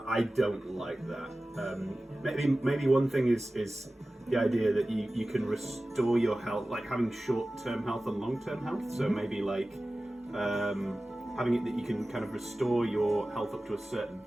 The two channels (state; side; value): normal; both; correlation 0.96